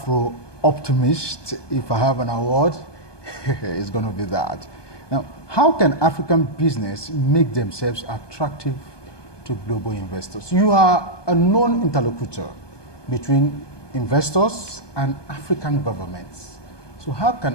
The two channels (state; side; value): late; right; 1.2 ms